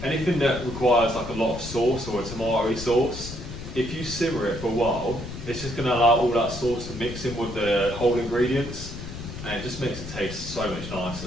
anything that requires like a lot of sauce or a tomato sauce. If you simmer it for a while, it's just going to allow all that sauce to mix in with the whole ingredients, and it just makes it taste so much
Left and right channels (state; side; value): noise; left; rumble, 10 dB below the sound